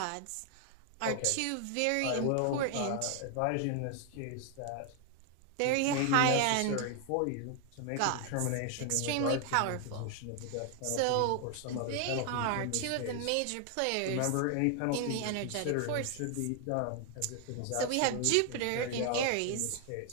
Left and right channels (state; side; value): different; both; correlation 0.00